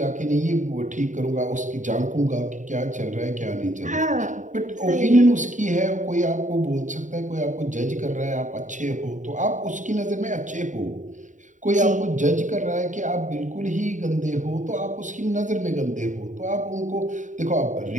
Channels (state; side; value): late; left; 0.36 ms